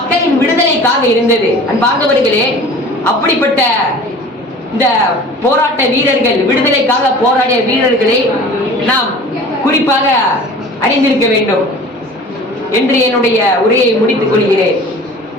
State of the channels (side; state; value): both; normal; correlation 0.43